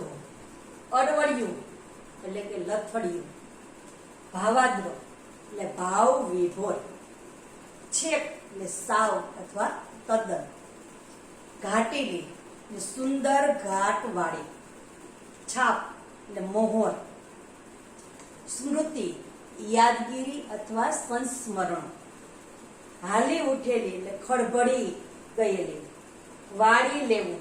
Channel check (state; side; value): identical; both; correlation 1.00